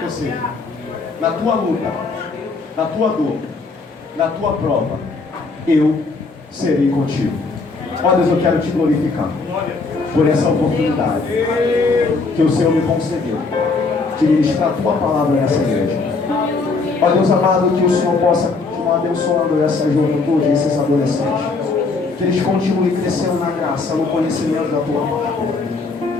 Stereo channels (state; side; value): quieter; right; 4.0 dB